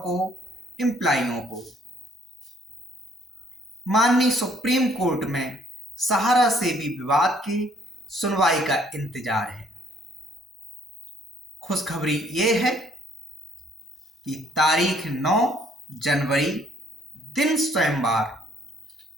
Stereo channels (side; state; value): both; normal; correlation 0.63